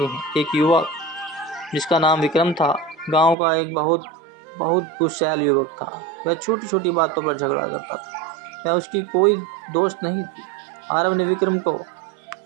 हैं। एक युवक जिसका नाम विक्रम था, गांव का एक बहुत गुस्सैल युवक था। वह छोटी छोटी बातों पर झगड़ा करता था। वह उसकी कोई दोस्त नहीं थी। आरब ने विक्रम को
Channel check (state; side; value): drops out; left; at 3.4 s